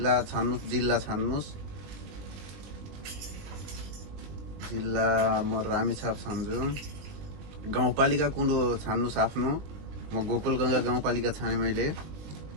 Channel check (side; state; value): left; late; 20 ms